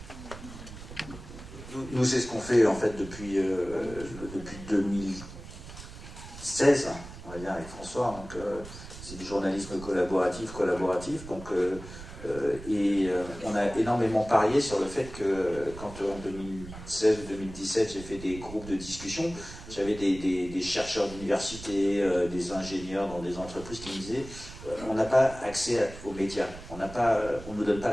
Nous, c'est ce qu'on fait en fait depuis 2016, on va dire, avec François. Donc, c'est du journalisme collaboratif. Donc, on a énormément parié sur le fait que quand en 2016 ou 2017, j'ai fait des groupes de discussion, j'avais des chercheurs d'université, des ingénieurs dans des entreprises qui me disaient on n'a pas accès aux médias, on ne nous donne pas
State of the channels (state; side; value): noise; right; rumble, 14 dB below the sound